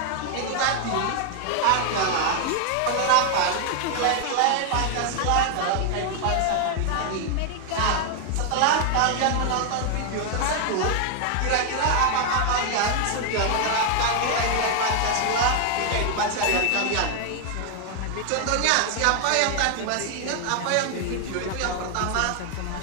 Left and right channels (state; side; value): different; both; correlation 0.00